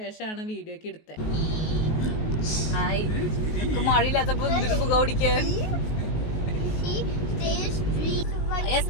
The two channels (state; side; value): late; right; 19 ms